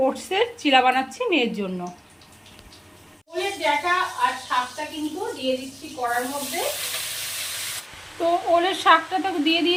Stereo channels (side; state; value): both; identical; correlation 1.00